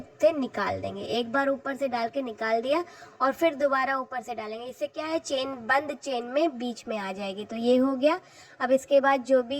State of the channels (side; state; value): both; identical; correlation 1.00